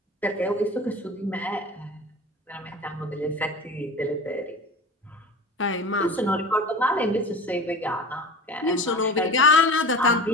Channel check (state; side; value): normal; both; correlation 0.35